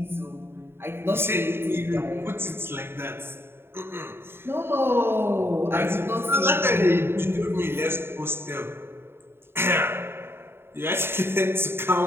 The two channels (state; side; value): late; left; 0.11 ms